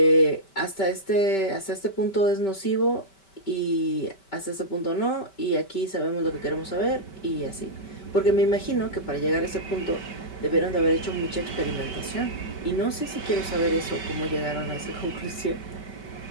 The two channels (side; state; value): right; late; 5.2 ms